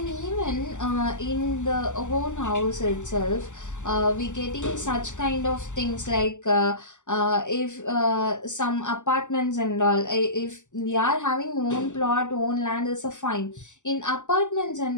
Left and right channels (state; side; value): late; right; 0.85 ms